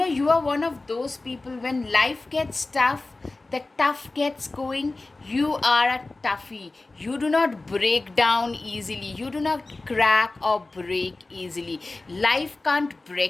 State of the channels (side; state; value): right; quieter; 3.2 dB